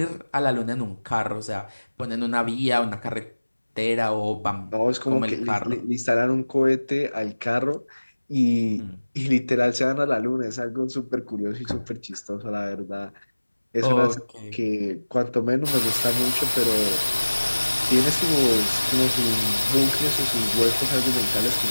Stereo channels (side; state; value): both; inverted; correlation -1.00